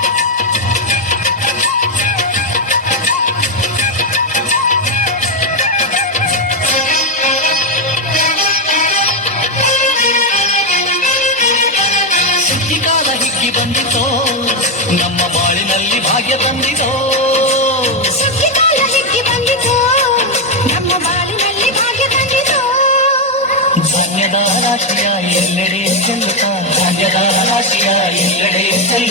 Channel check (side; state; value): both; normal; correlation 0.04